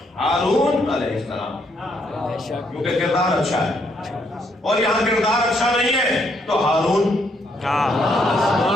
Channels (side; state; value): both; normal; correlation 0.73